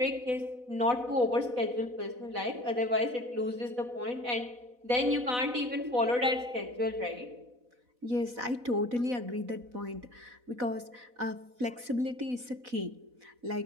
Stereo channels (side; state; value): left; late; 4.0 ms